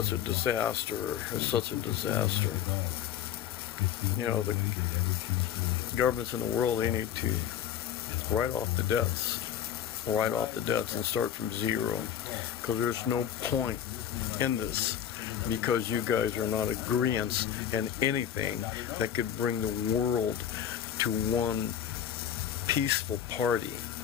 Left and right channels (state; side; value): quieter; right; 9.7 dB